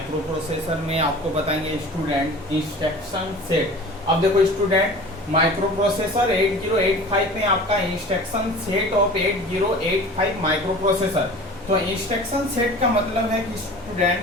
प्रोसेसर में आपको बताएंगे स्टूडेंट इंस्ट्रक्शन सेट। अब देखो स्टूडेंट, माइक्रो प्रोसेसर 8085 में आपका instruction set of 8085 micro processor. तो इंस्ट्रक्शन सेट का मतलब है कि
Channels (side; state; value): both; normal; correlation 0.40